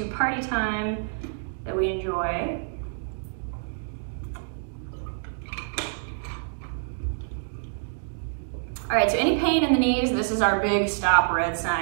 party time that we enjoy. All right, so any pain in the knees, this is our big stop red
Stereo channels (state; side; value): silent; left; digital silence